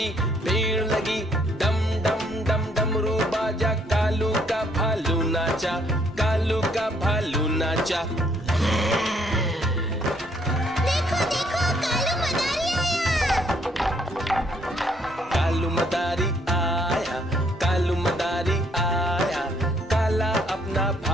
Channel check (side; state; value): both; normal; correlation 0.68